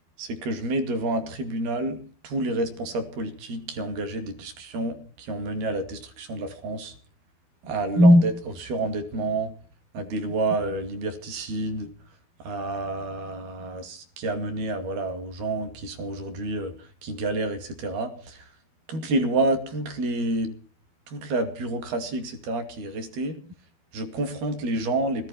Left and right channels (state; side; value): late; left; 12 ms